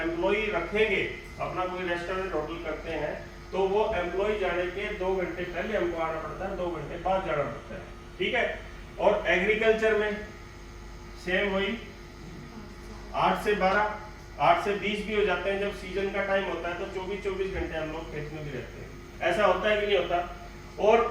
रखेंगे, अपना कोई रेस्टोरेंट होटल करते हैं, तो वो एम्प्लॉय जाने के 2 घंटे पहले हमको आना पड़ता है, 2 घंटे बाद जाना पड़ता है, ठीक है। और एग्रीकल्चर में सेम वही 8 से 12, 8 से 20 भी हो जाते हैं। जब सीजन का टाइम होता है तो 24 घंटे हम लोग खेत में भी रहते हैं। ऐसा होता है कि नहीं होता? और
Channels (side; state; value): both; identical; correlation 1.00